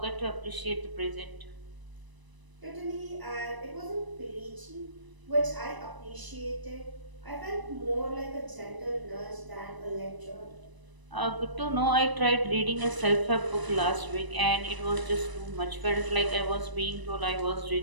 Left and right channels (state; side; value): late; left; 1.0 ms